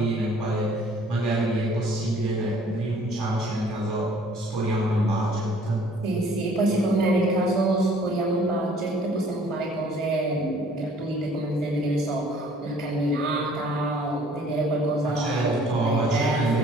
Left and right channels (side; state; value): both; normal; correlation 0.56